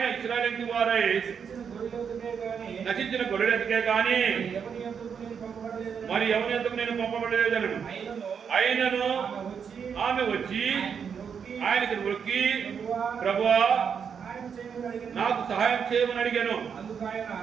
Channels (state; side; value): quieter; left; 6.9 dB